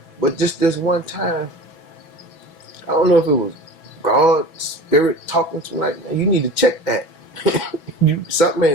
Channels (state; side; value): late; right; 6.1 ms